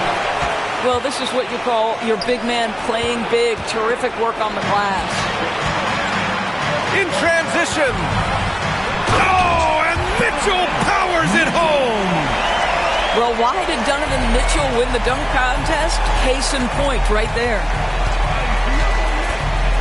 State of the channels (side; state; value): both; identical; correlation 1.00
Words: Well, this is what you call your big man playing big. Terrific work on the glass. In transition. Oh, and Mitchell powers it home. Well, why did Donovan Mitchell win the dunk contest? Case in point right there.